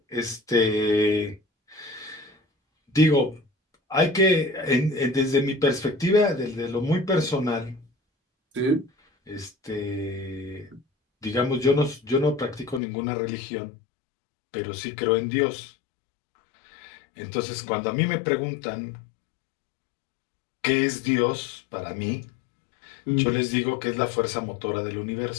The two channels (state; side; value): drops out; right; at 12.8 s